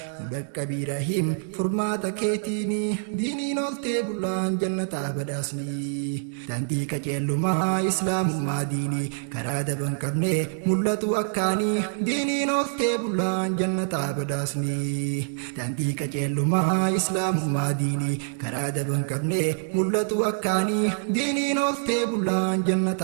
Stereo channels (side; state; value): left; silent; digital silence